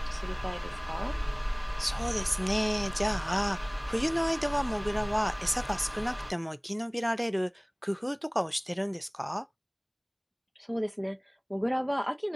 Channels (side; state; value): both; identical; correlation 1.00